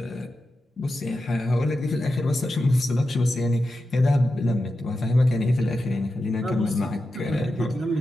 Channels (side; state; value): both; normal; correlation 0.90